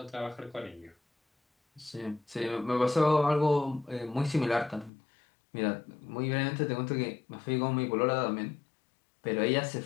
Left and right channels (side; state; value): right; drops out; at 4.9 s